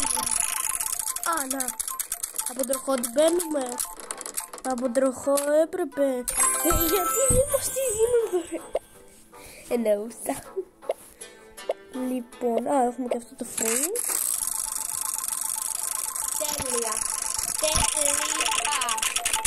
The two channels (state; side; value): identical; both; correlation 1.00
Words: Να. Από τροχό την παίρνουμε. Από τροχό έπρεπε. Γιατί δεν μας τη δίνουν δωρεάν. Εννοούσα. Λοιπόν, έχουμε και αυτό το frame. Τέλεια.